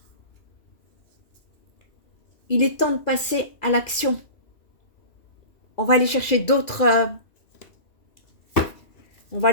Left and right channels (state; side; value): late; right; 2.4 ms